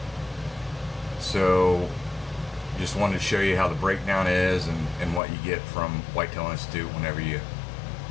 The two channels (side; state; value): right; drops out; at 5.2 s